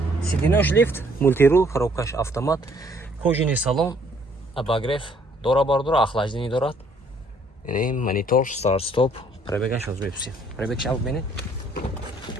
Сиденёж лифт, мультирул, коробкаш автомат, кожаный салон, обогрев, дора бардора, охлаждение дорад. Яъне монитор, старт, стоп, пробегаш аз мепси. Пробег шав бинед.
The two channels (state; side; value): normal; both; correlation 0.63